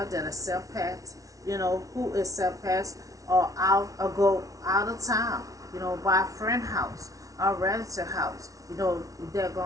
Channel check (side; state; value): left; late; 0.17 ms